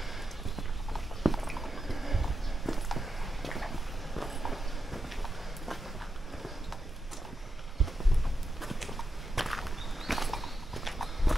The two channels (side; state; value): both; normal; correlation 0.86